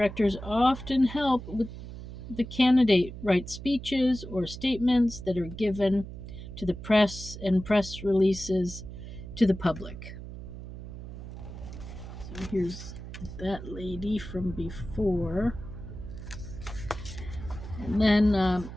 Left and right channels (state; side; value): noise; right; hum, 11 dB below the sound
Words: often help with the candidate write speeches or statements that are given to the press and press releases to the public. So here's that lady from before. And then